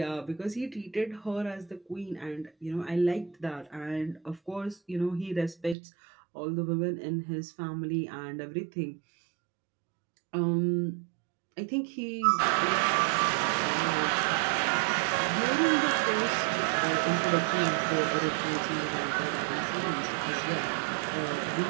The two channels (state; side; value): drops out; left; at 5.8 s